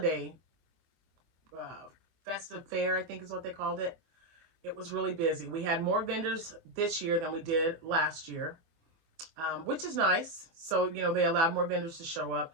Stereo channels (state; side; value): late; left; 24 ms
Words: festive fair, I think is what they called it. It was really busy. We had more vendors this year than we did last year, which is nice. So, they allowed more vendors to show up.